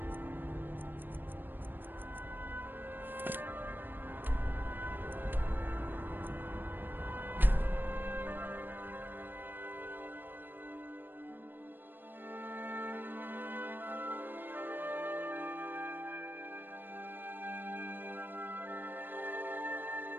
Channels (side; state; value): left; late; 0.094 ms